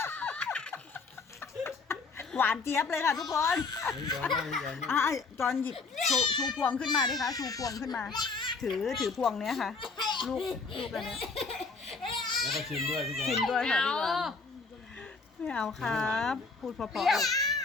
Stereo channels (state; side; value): quieter; right; 4.3 dB